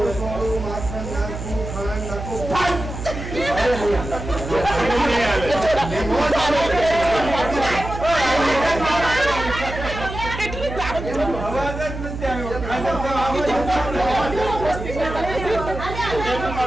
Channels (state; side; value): noise; right; hum, 8 dB below the sound